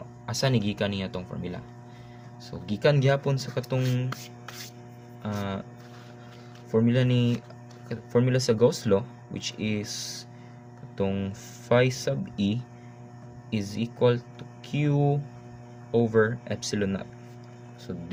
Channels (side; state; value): both; identical; correlation 1.00